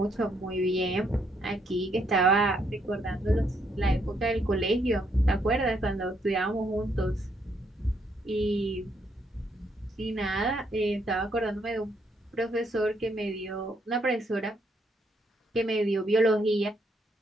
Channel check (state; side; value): normal; both; correlation 0.73